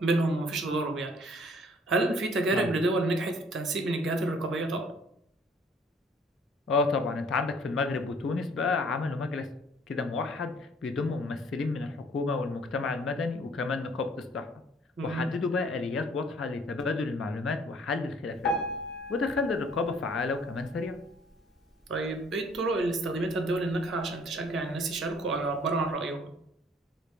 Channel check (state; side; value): normal; both; correlation 0.58